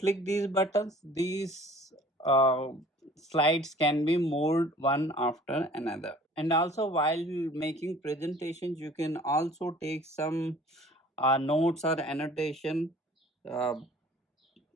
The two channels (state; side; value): normal; both; correlation 0.50